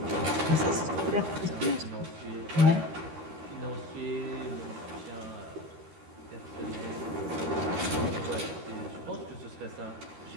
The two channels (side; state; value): left; late; 13 ms